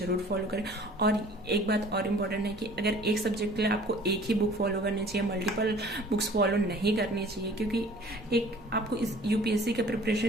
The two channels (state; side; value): normal; both; correlation 0.49